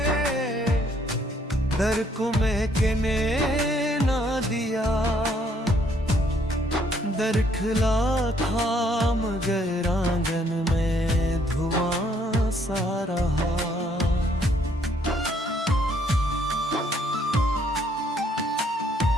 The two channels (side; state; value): both; normal; correlation 0.67